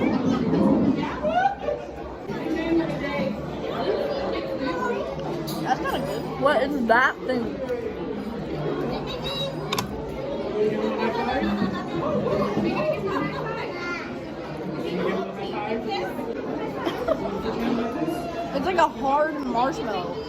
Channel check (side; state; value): both; identical; correlation 1.00